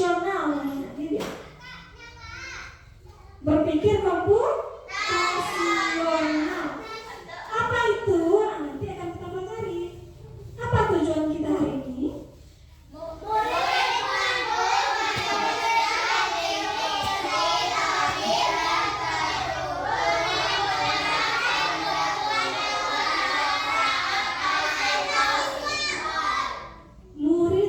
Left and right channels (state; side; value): identical; both; correlation 1.00